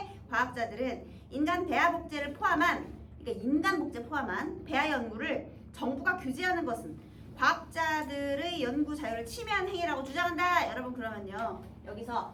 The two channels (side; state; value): both; identical; correlation 1.00